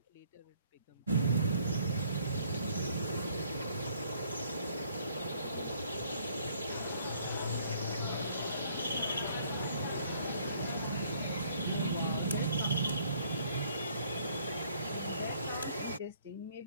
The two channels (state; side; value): inverted; both; correlation -0.63